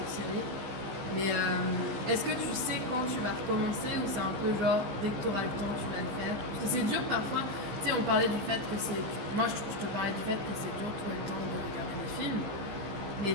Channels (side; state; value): left; late; 15 ms